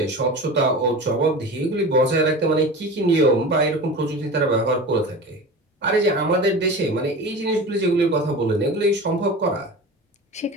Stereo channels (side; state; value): both; normal; correlation 0.33